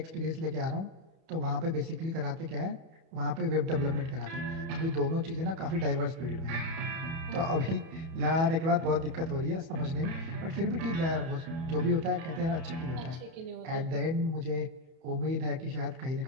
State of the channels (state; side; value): late; left; 31 ms